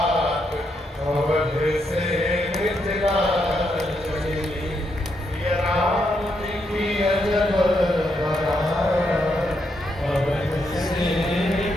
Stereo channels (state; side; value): normal; both; correlation 0.79